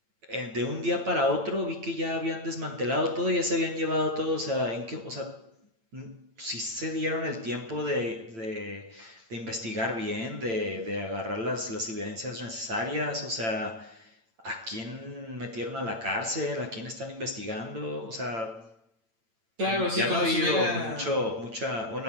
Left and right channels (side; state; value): left; late; 8.9 ms